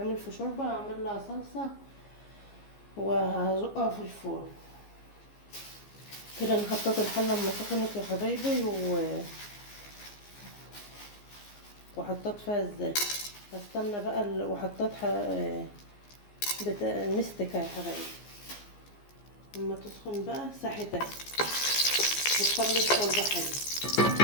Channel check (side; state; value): right; late; 15 ms